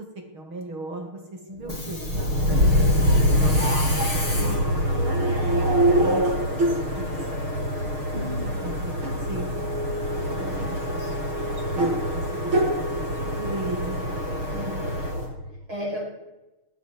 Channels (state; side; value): late; left; 6.5 ms